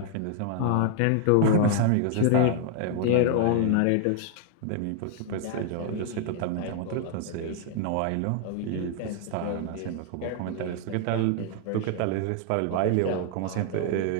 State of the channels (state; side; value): different; both; correlation 0.00